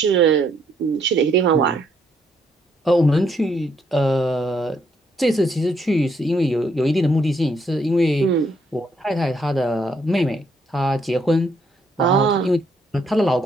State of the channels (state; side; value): normal; both; correlation 0.72